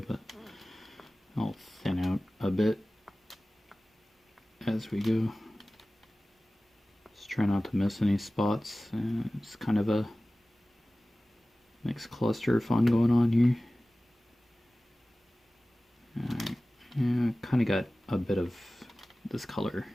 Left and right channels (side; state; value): both; normal; correlation 0.97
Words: but I'll thin out a bit as we go. Just try not to miss any spots. It's kind of a mixed cluster of fun going on here. Alright, yeah, kind of got a bit of this color